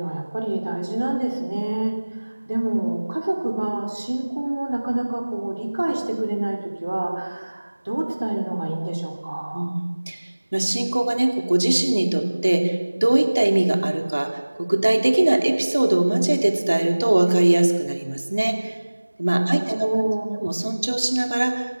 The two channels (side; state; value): both; inverted; correlation -1.00